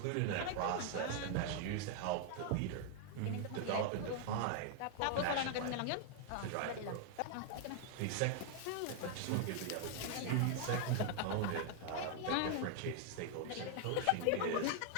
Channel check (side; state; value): both; different; correlation 0.00